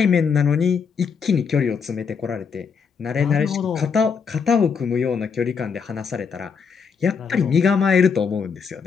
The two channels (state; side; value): quieter; right; 6.1 dB